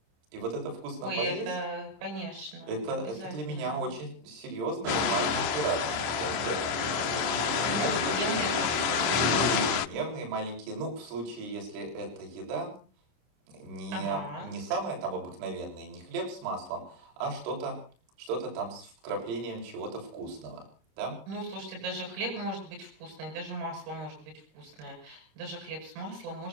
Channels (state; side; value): late; left; 25 ms